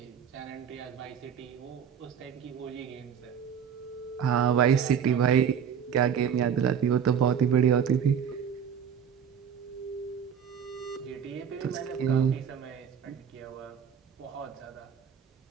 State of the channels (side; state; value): left; quieter; 7.9 dB